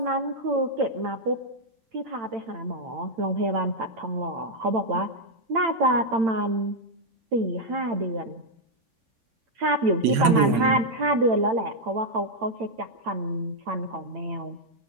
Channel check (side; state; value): left; late; 8.9 ms